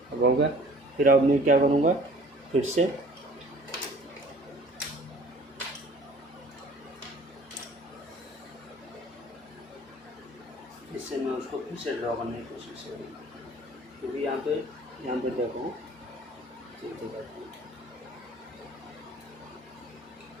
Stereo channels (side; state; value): both; normal; correlation 0.50